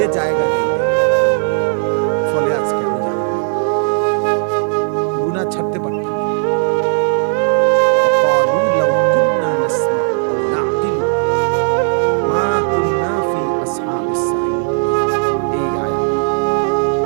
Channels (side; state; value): left; silent; 59 dB below the other